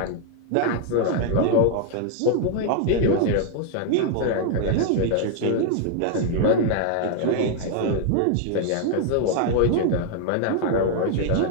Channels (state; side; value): different; both; correlation 0.00